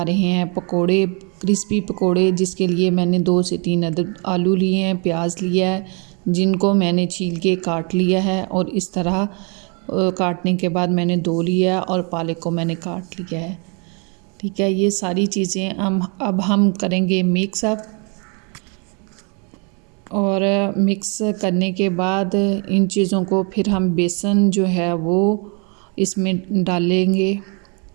रहे हैं पकोड़े, क्रिस्पी पकोड़े, जिसके लिए मैंने 2 से 3 अदद आलू लिए हैं, प्याज लिया है, जिनको मैंने छील के काट लिया है और इस तरह काटने के बाद मैंने धो लिया और पालक को मैंने काट लिया है। ठीक है, ये सारी चीज़ें अब हम करेंगे मिक्स अप, और मिक्स करने के बाद इन चीज़ों को फिर हम बेसन जो है वो इसमें डालेंगे।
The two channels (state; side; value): quieter; left; 34.5 dB